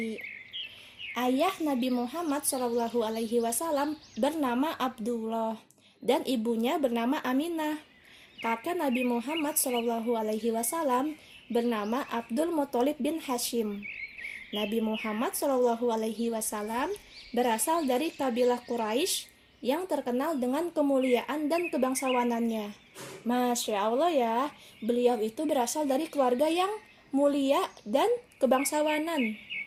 Ayah Nabi Muhammad SAW bernama Abdullah dan ibunya bernama Aminah. Kakek Nabi Muhammad SAW bernama Abdul Muthalib bin Hashim. Nabi Muhammad SAW berasal dari kabilah Quraisy yang terkenal dengan kemuliaan dan kebangsawanannya. Masya Allah ya, beliau itu berasal dari keluarga yang mulia dan kebangsawanan.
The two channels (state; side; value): identical; both; correlation 1.00